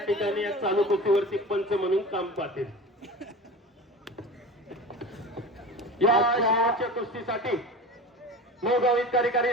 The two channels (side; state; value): both; normal; correlation 0.34